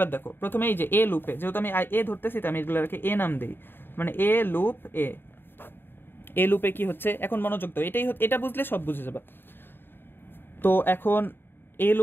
দেখো প্রথমে এই যে A লুপে, যেহেতু আমি A ধরতেছি তাই আমি এগুলোকে A নাম দিই, মানে A লুপ A লুপে কি হচ্ছে এখন মনোযোগ দাও, এটা বুঝলে সব বুঝে যাবে। তো এখন A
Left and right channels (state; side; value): late; right; 0.10 ms